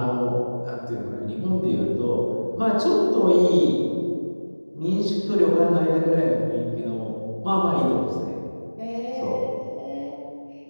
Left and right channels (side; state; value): both; inverted; correlation -1.00